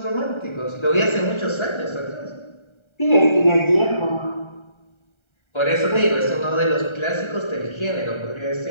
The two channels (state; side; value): late; right; 1.3 ms